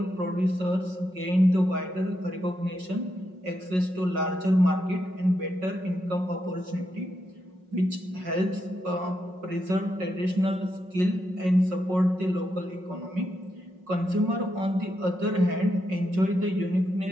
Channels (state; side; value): late; left; 5.4 ms